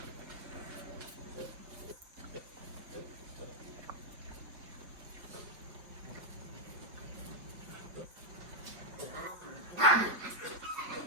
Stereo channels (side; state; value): left; late; 5.4 ms